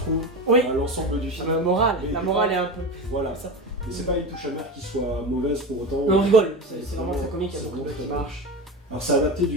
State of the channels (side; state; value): both; normal; correlation 0.24